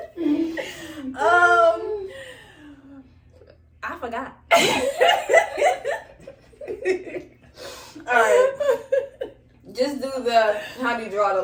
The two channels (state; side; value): identical; both; correlation 1.00